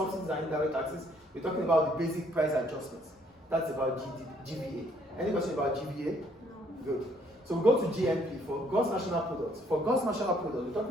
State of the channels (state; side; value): normal; both; correlation 0.65